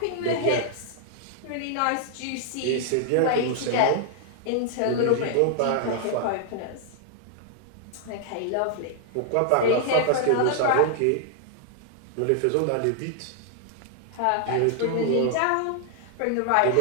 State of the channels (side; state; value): both; different; correlation -0.01